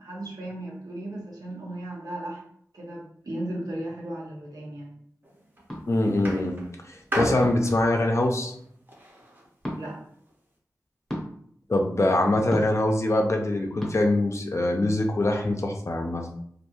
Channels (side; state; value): both; normal; correlation 0.88